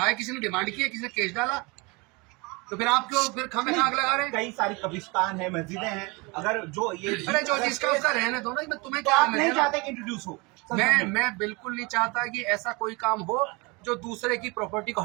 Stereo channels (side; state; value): left; quieter; 27.2 dB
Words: है, किसी ने डिमांड की है, किसी ने केस डाला? तो फिर आप क्यों फिर खामे आग लगा रहे हैं? कई सारी कब्रिस्तान है, मस्जिदें हैं, अगर जो ये जो जिसका उसका रहने दो ना। मैं तुम्हें तो क्या आप नहीं चाहते कि इंट्रोड्यूस हो? मैं बिल्कुल नहीं चाहता कि ऐसा कोई काम हो जो दूसरे की प्रॉपर्टी को